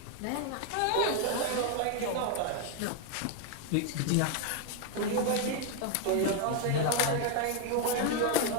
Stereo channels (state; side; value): different; both; correlation 0.01